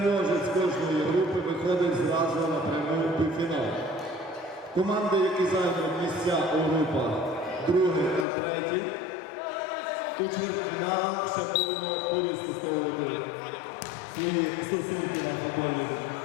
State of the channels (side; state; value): right; drops out; at 8.2 s